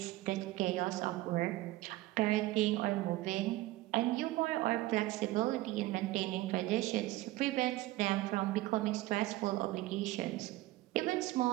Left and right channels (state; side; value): quieter; left; 17.6 dB